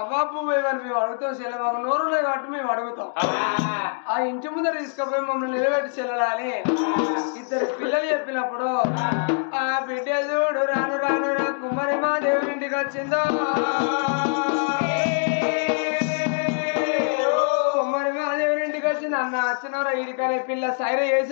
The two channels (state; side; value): silent; right; digital silence